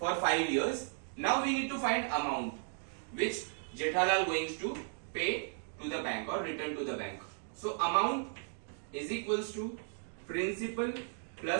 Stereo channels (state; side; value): silent; left; 54 dB below the other